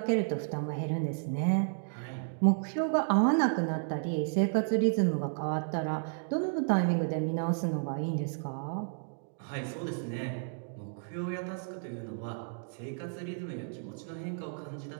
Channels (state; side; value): silent; left; digital silence